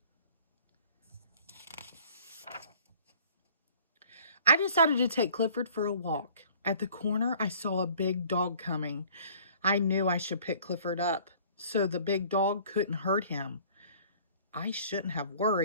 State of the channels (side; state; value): both; inverted; correlation -0.53